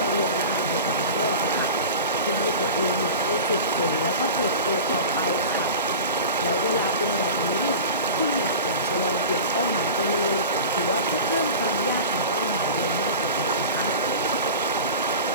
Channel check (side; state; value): both; inverted; correlation -0.33